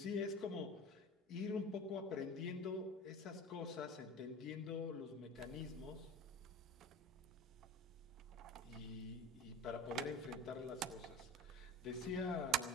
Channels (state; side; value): normal; both; correlation 0.35